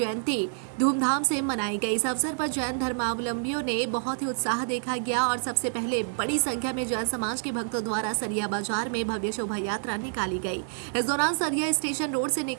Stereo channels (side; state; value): left; silent; digital silence